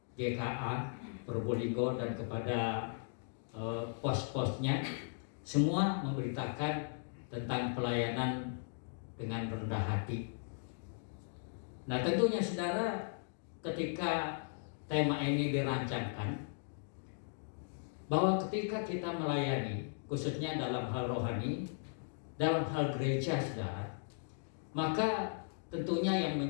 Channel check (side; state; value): right; silent; digital silence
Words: GKA Probolinggo dan kepada pos-posnya, semua memberitakan tentang pelayanan dengan rendah hati. Nah, tentunya saudara, ketika tema ini dirancangkan, bahwa ketika kita melayani, khususnya dalam hal rohani, dalam hal gereja saudara, maka tentunya yang